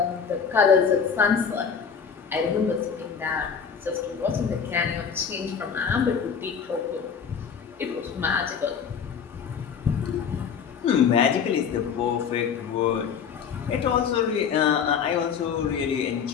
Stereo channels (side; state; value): right; quieter; 6.8 dB